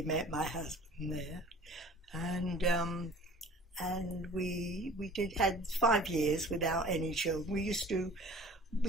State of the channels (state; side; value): normal; both; correlation 0.47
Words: met my husband there, and we had 5 years without any children.